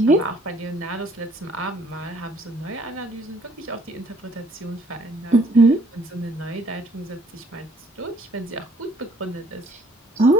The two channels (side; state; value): both; normal; correlation 0.62